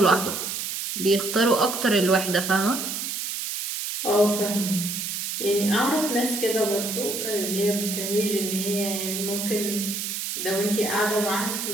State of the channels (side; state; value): right; noise; hiss, 4 dB below the sound